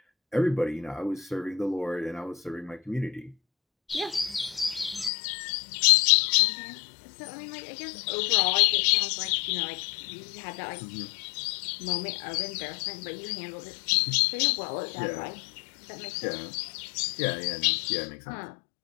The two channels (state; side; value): drops out; right; at 5.1 s